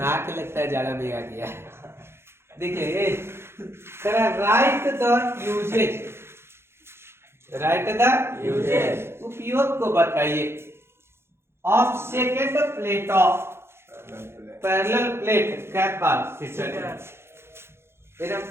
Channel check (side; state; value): left; late; 0.12 ms